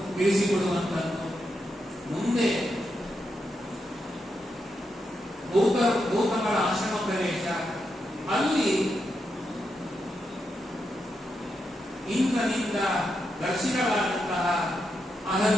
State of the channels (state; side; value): normal; both; correlation 0.84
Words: ತಿಳಿಸಿಕೊಡುವಂತದ್ದು. ಮುಂದೆ ಗೌತಮರ ಆಶ್ರಮ ಪ್ರವೇಶ, ಅಲ್ಲಿ ಇಂದ್ರನಿಂದ ದರ್ಶಿತವಾದಂತಹ